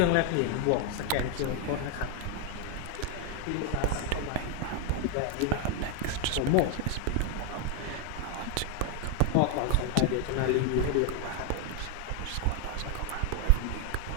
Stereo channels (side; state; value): both; different; correlation 0.01